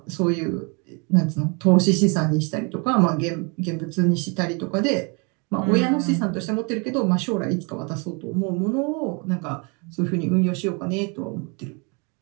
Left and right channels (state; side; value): quieter; left; 32.7 dB